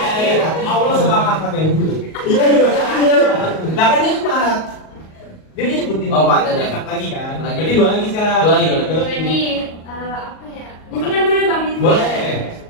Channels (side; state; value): right; late; 38 ms